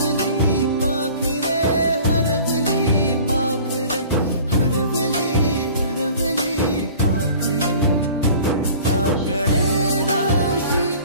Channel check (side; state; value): both; inverted; correlation -0.46